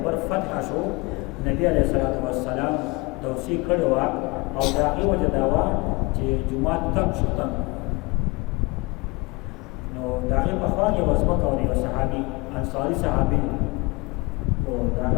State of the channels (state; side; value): quieter; right; 25.5 dB